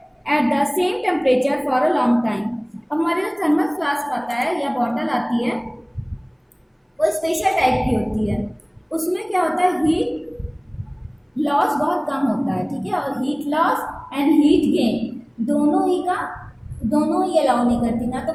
at the same temperature for a long time. हमारे जो thermos flask आता है या bottle आती है वो special type की होती है, उसमें क्या होता है, हीट लॉस बहुत कम होता है, ठीक है, और heat loss and heat gain दोनों ही अलाउ नहीं करती, ना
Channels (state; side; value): identical; both; correlation 1.00